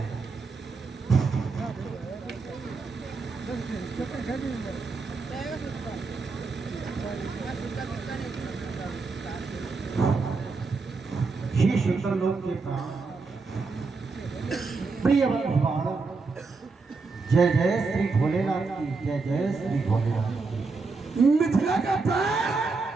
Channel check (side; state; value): left; quieter; 4.2 dB